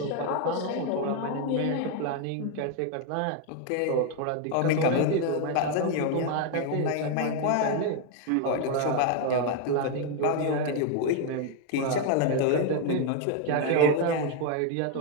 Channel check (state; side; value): different; both; correlation 0.01